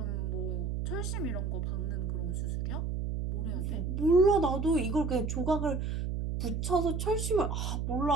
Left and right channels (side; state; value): right; noise; hum, 1 dB below the sound